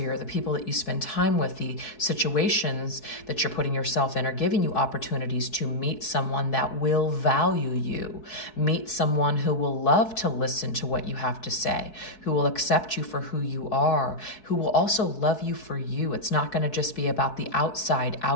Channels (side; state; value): right; late; 4.6 ms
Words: the people that you spend time with, the situations that you're putting yourself in are giving you opportunities to meet someone that will value you, meet someone who will love to listen to what you have to say, who will accept you for who you are, who will also love you for you. It's not going to just be about the